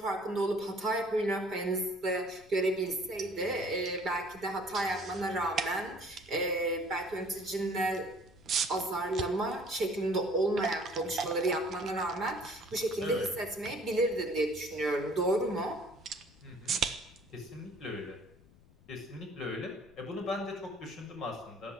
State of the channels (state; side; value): noise; left; rumble, 26 dB below the sound